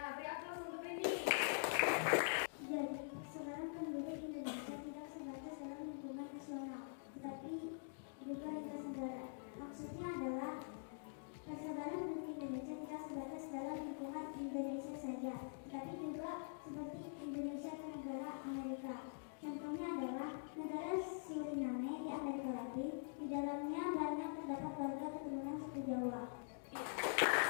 beri aplaus untuk Rini. Jadi, sekarang penduduk Indonesia tidak sebatas dalam lingkungan nasional, tetapi juga lintas negara. Maksudnya adalah persebaran penduduk Indonesia tidak sebatas dalam lingkungan Indonesia saja, tetapi juga seperti Indonesia ke negara Amerika. Contohnya adalah negara Suriname di Amerika Latin. Di dalamnya banyak terdapat warga keturunan suku Jawa.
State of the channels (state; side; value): silent; right; digital silence